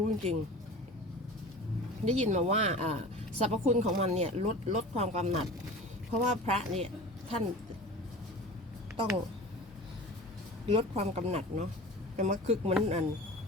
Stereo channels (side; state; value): both; normal; correlation 0.37